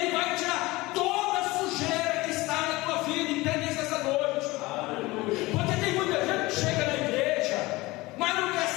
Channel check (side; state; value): right; quieter; 20.9 dB